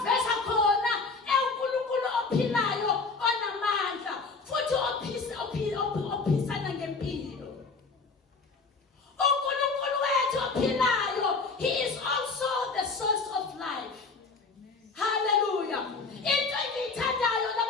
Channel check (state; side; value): quieter; right; 4.3 dB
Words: khona uNkulunkulu ophilayo onamandla futhi ophisana ngempilo. uNkulunkulu wethu ophilayo, he is also the source of life. Hallelujah. Into engiyithandayo